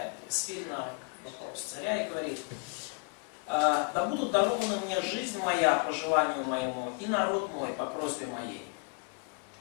Эстери на вопрос царя и говорит: да будут дарованы мне жизнь моя по желанию моему и народ мой по просьбе моей.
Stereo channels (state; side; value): quieter; right; 37.1 dB